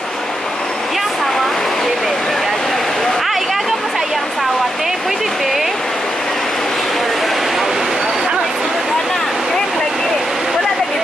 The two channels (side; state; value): both; normal; correlation 0.84